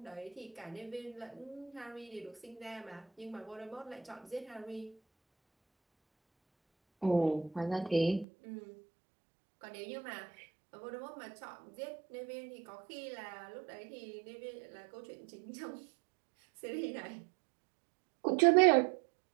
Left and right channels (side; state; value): left; drops out; at 8.2 s